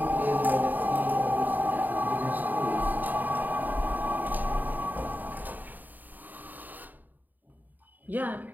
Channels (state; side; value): late; left; 0.086 ms